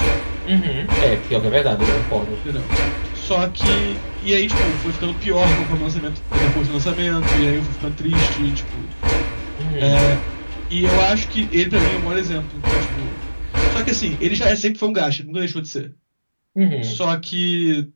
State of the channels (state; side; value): inverted; both; correlation -1.00